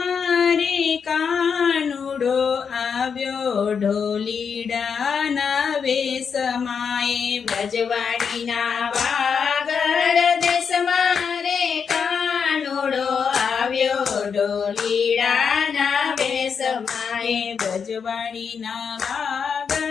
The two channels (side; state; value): right; quieter; 6.4 dB